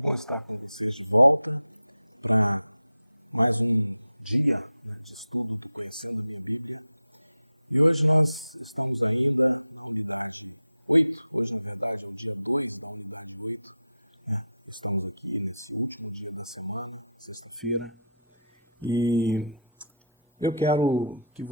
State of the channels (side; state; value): both; inverted; correlation -0.72